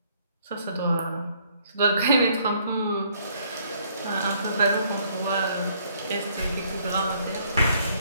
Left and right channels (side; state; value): both; inverted; correlation -0.65